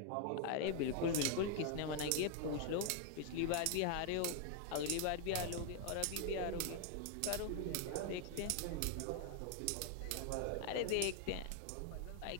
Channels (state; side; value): different; both; correlation 0.00